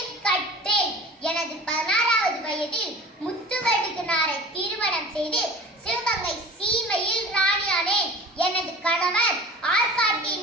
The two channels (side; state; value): both; normal; correlation 0.40